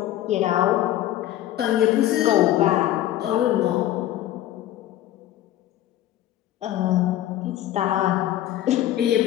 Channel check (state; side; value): quieter; right; 13.3 dB